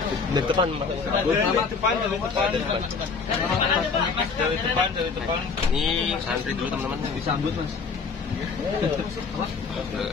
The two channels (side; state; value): right; quieter; 5.0 dB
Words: Dari depan maksudnya. Dari depan. Ini antri dulu teman-teman. Disambut Mas.